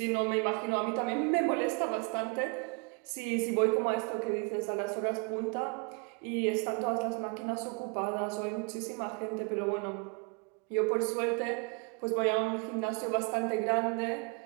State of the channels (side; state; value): left; quieter; 34.4 dB